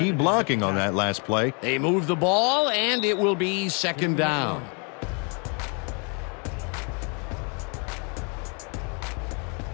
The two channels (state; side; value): quieter; right; 35.8 dB